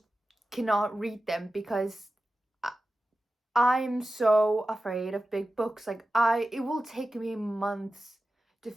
cannot read them because I'm so afraid of big books. Like, it will take me months to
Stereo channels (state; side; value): normal; both; correlation 0.94